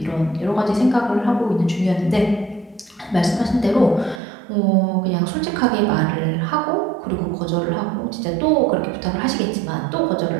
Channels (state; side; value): drops out; left; at 4.2 s